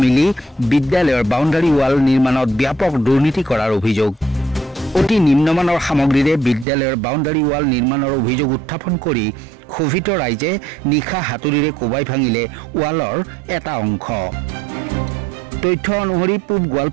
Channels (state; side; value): drops out; left; at 6.7 s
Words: মিলি বিদ্যালয়ৰ বাউণ্ডাৰী ৱাল নিৰ্মাণত ব্যাপক দুৰ্নীতি কৰাৰ অভিযোগ। অতি নিম্নমানৰ সামগ্ৰীৰে বিদ্যালয়ৰ বাউণ্ডাৰী ৱাল নিৰ্মাণৰ অভিযোগ উত্থাপন কৰি ক্ষোভিত ৰাইজে নিশা হাতুৰিৰে কোবাই ভাঙিলে ৱালৰ এটা অংশ। তথ্য অনুসৰি পূব